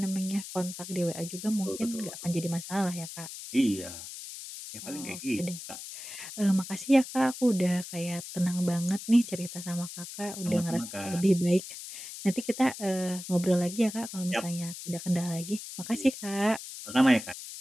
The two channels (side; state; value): left; noise; hiss, 11 dB below the sound